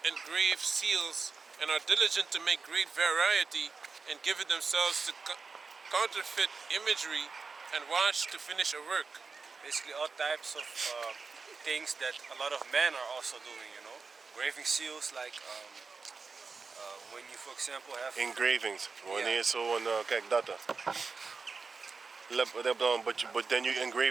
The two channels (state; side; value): quieter; left; 4.6 dB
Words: and grave seals, and are diligent to make great variety, and give it themselves to counterfeit imagery, and watch to finish a work. Basically all types of things that a lot of men are also doing, you know. Graving seals like when you, for example, have... Engravings. Wanneer zo een, kijk dat dan. But then you